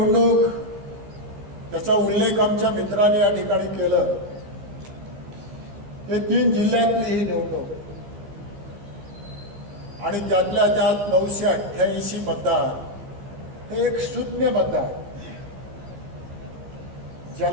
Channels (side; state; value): left; late; 15 ms